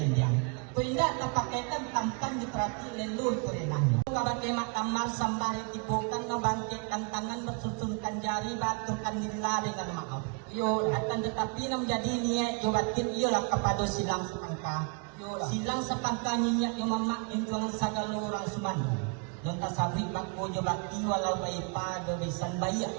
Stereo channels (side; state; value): left; quieter; 36.1 dB